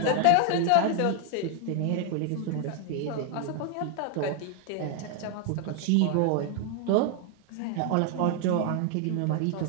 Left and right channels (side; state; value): both; different; correlation 0.00